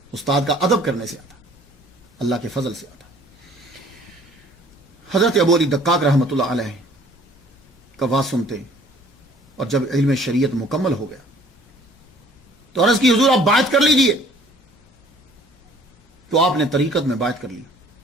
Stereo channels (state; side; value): normal; both; correlation 0.55